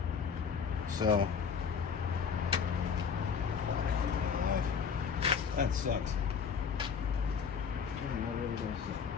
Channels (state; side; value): quieter; right; 6.4 dB